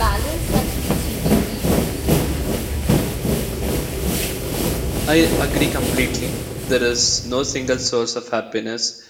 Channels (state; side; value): identical; both; correlation 1.00